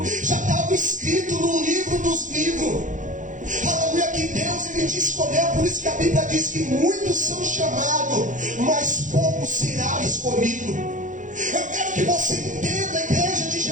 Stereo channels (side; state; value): left; late; 0.37 ms